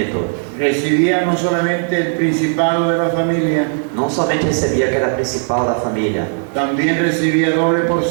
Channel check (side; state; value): left; silent; 68 dB below the other